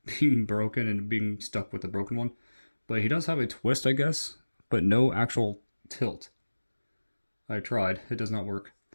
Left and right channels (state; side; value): inverted; both; correlation -1.00